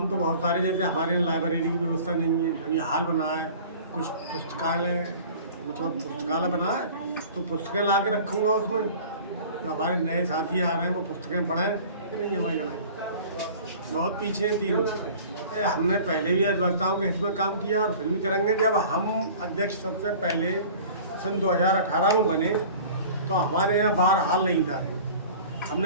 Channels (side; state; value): both; inverted; correlation -0.44